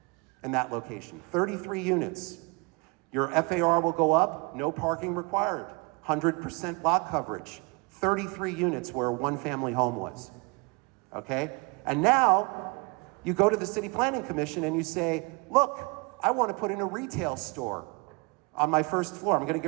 in that location. 33 units. Your FAR will go up, no parking required, 100% lot coverage, 33 units where a one-family home was. Okay? And now you go to the City Planning Commission and you say, look, I want to put in a retail store on my first floor. I'm going to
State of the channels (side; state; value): left; quieter; 29.1 dB